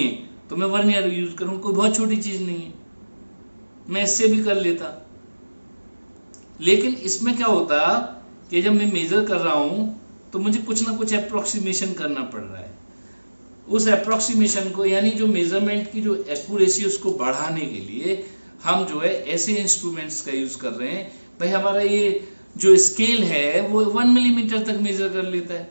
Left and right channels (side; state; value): both; inverted; correlation -1.00